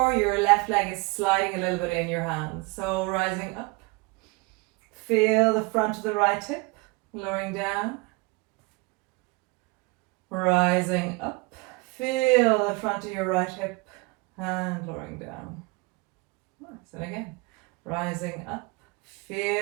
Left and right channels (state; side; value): quieter; left; 26.2 dB